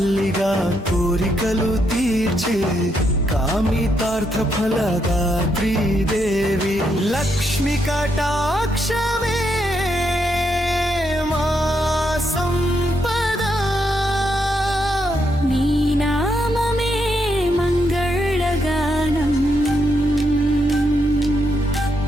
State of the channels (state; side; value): normal; both; correlation 0.79